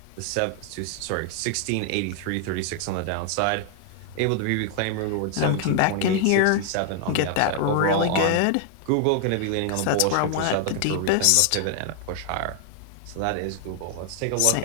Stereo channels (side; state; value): both; different; correlation 0.00